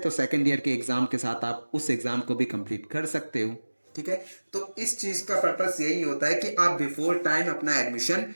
सेकंड ईयर के एग्जाम के साथ आप उस एग्जाम को भी कंप्लीट कर सकते हो, ठीक है। तो इस चीज का पर्पस यही होता है कि आप बिफोर टाइम अपना एडमिशन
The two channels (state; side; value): inverted; both; correlation -1.00